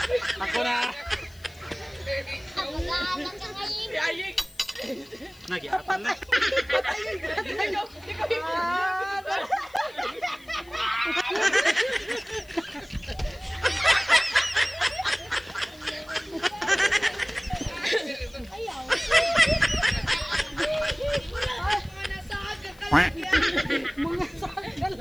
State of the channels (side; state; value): left; noise; hiss, 26 dB below the sound